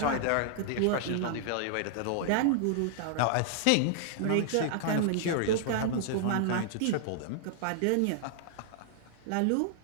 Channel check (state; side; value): different; both; correlation -0.01